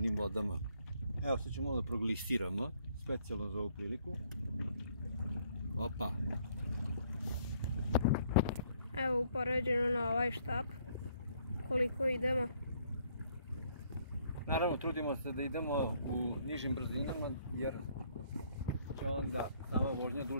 vodama. Evo, sad ćemo da proglistiramo specijalno za ovu priliku. Opa! Evo upoređeno na ovaj štap koliko idemo. Naravno, trudimo se da idemo u nižim brzinama jer će onda sama vožnja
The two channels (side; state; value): both; inverted; correlation -0.65